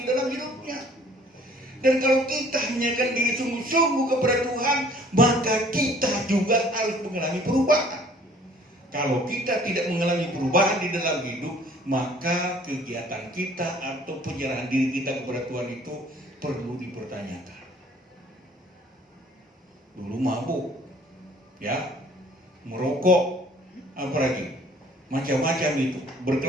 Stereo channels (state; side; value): normal; both; correlation 0.55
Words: dalam hidupnya. Dan kalau kita menyerahkan diri sungguh-sungguh kepada Tuhan, maka kita juga harus mengalami perubahan. Kalau kita tidak mengalami perubahan di dalam hidup, maka kegiatan kita atau penyerahan diri kita kepada Tuhan itu perlu dipertanyakan. Dulu mabuk, ya, merokok, apalagi macam-macam itu,